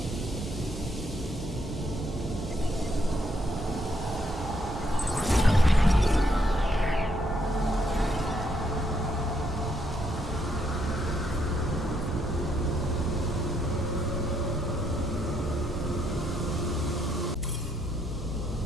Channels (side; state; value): both; normal; correlation 0.74